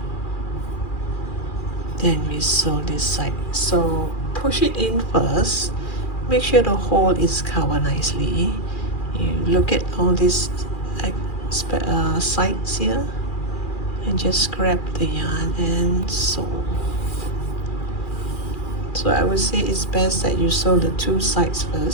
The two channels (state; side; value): late; right; 2.4 ms